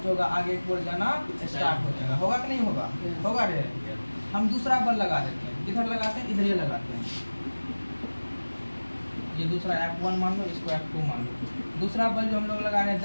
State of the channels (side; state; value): both; inverted; correlation -1.00